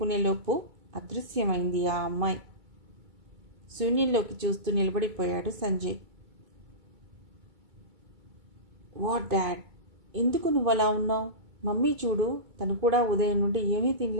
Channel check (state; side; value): late; left; 2.5 ms